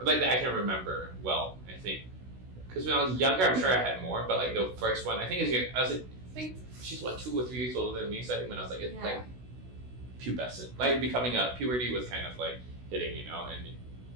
like I can remember well. I think because when I was younger, I'm sure I had more. But like the first one, I think I think she's 2 or 3 years older than me. So I think when I was like Yeah. like pubescent, like becoming a puberty was kind of like hitting, you know, and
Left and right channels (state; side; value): late; left; 16 ms